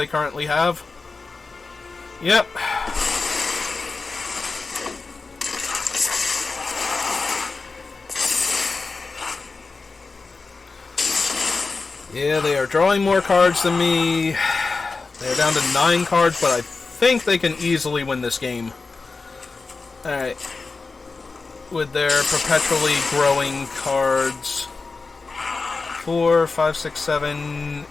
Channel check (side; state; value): right; quieter; 4.1 dB